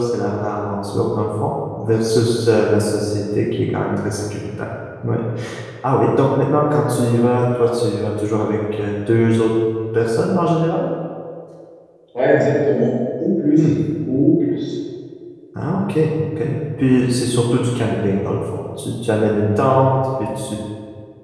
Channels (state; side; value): identical; both; correlation 1.00